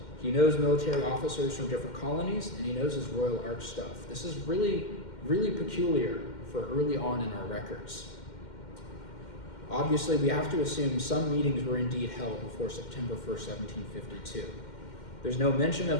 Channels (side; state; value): right; late; 2.1 ms